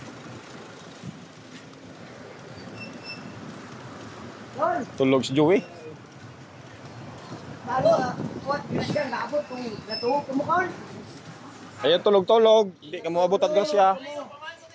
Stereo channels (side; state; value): both; identical; correlation 1.00